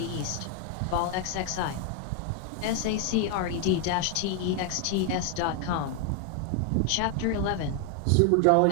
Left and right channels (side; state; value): both; different; correlation 0.01